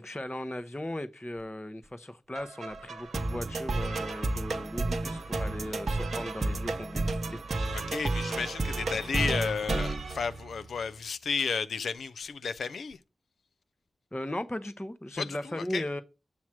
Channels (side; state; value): both; normal; correlation 0.89